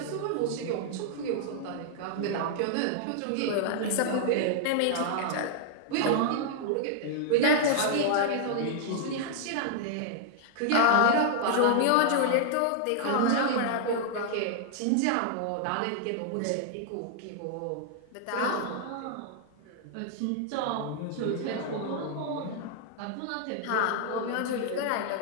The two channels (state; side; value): different; both; correlation 0.00